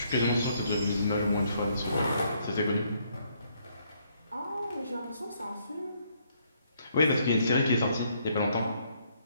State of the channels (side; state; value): both; inverted; correlation -0.70